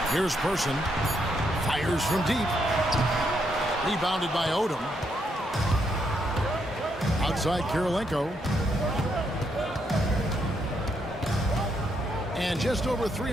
Here's Person. Fires from deep. Rebounded by Odom. Outside Kirilenko. And just over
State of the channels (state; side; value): normal; both; correlation 0.77